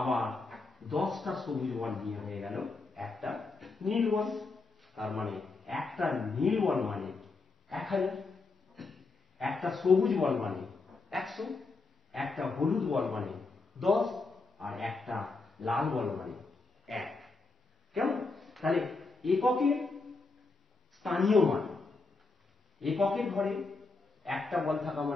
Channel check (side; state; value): right; quieter; 3.8 dB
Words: 10টা সবুজ বল নিয়ে হয়ে গেল একটা নীল বল। তার মানে একটা নীল বল মানে 1000, একটা সবুজ বল মানে 100, একটা হলুদ বল মানে 10, আর একটা লাল বল মানে 1। কেমন? তাহলে এককের স্থানীয় মান, এককের ঘরে একটা বল থাকা